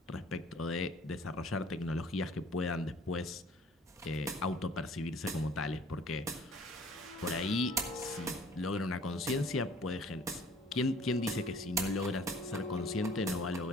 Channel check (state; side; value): normal; both; correlation 0.53